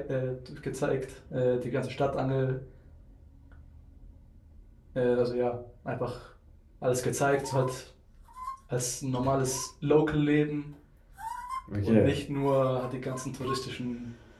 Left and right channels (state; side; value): identical; both; correlation 1.00